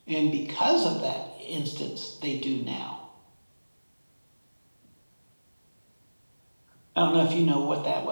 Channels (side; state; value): both; inverted; correlation -1.00